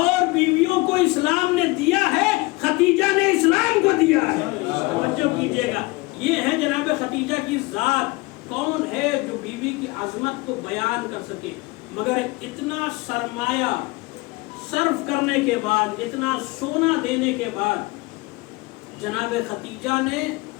بیویوں کو اسلام نے دیا ہے، خدیجہ نے اسلام کو دیا ہے. توجہ کیجئے گا. یہ ہے جناب خدیجہ کی ذات. کون ہے جو بیوی کی عظمت کو بیان کر سکے؟ مگر اتنا سرمایہ صرف کرنے کے بعد، اتنا سونا دینے کے بعد جناب خدیجہ نے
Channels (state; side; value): quieter; right; 23.8 dB